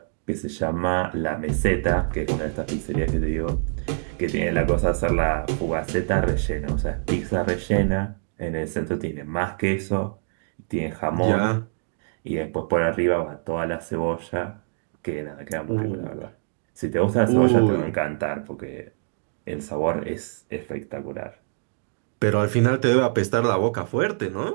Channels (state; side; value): silent; left; digital silence